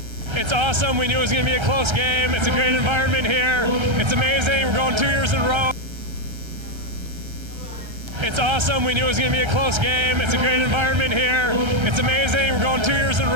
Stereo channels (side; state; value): left; late; 1.3 ms